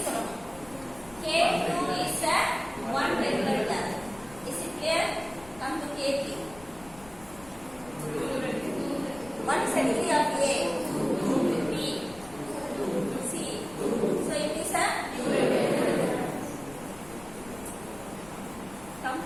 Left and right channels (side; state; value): left; noise; rumble, 20 dB below the sound